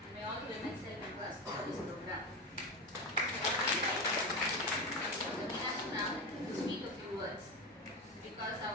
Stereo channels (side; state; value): both; normal; correlation 0.20